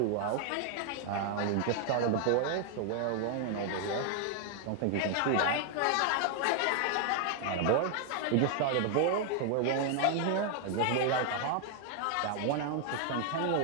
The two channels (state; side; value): different; both; correlation 0.00